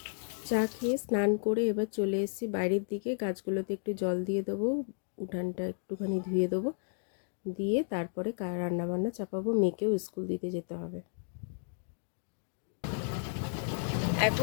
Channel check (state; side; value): silent; right; digital silence